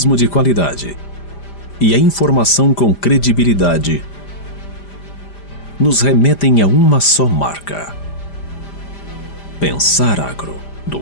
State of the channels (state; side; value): late; right; 5.0 ms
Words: de qualidade e a informação com credibilidade nos remetem a uma só marca. Pensar Agro, do